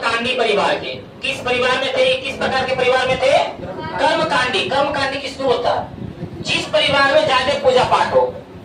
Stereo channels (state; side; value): identical; both; correlation 1.00